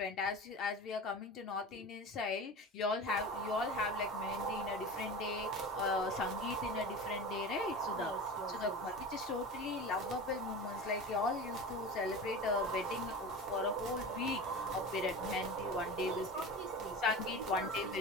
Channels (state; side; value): normal; both; correlation 0.31